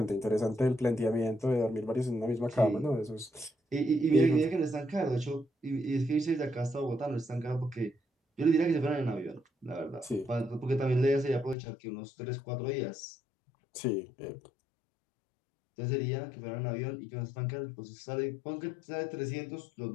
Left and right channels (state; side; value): drops out; right; at 11.6 s